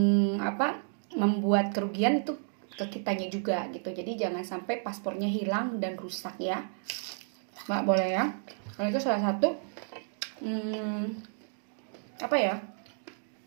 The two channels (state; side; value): silent; left; digital silence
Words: apa membuat kerugian itu ke kitanya juga gitu. Jadi jangan sampai paspornya hilang dan rusak ya, nggak boleh ya. Kalau itu salah satu apa ya,